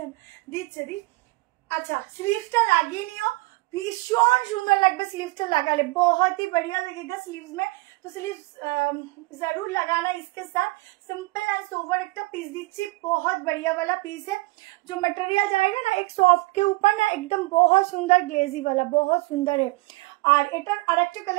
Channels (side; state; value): left; quieter; 23.0 dB